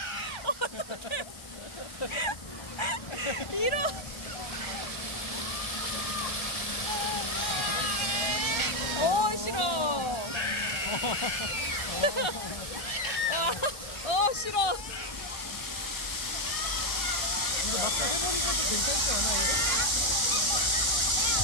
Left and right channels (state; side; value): late; right; 1.3 ms